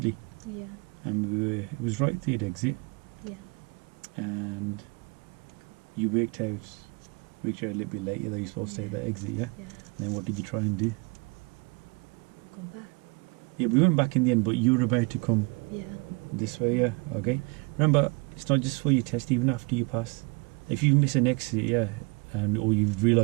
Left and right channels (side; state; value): left; quieter; 29.2 dB